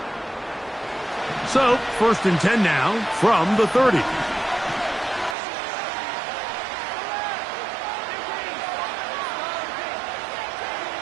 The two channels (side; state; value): left; drops out; at 5.4 s